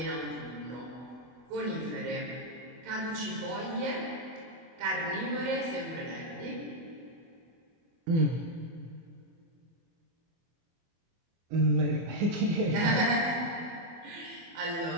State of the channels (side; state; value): left; late; 24 ms